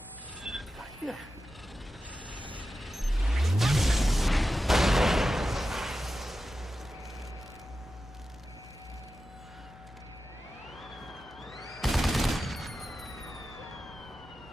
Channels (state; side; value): normal; both; correlation 0.92